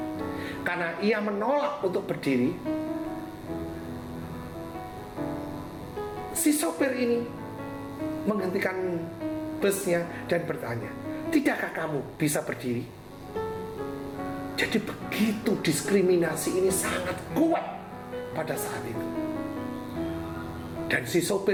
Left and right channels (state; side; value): identical; both; correlation 1.00